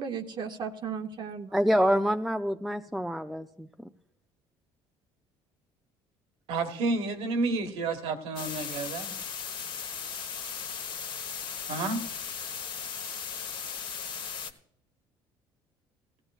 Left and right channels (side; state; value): both; normal; correlation 0.65